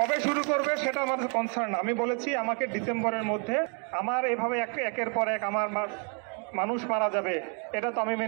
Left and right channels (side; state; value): left; quieter; 39.1 dB